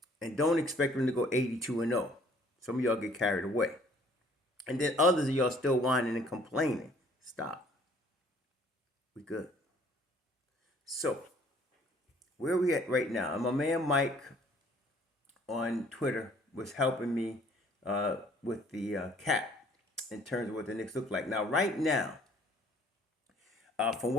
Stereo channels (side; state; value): both; normal; correlation 0.58